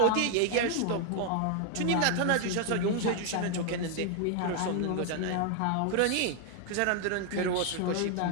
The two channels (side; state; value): both; different; correlation 0.00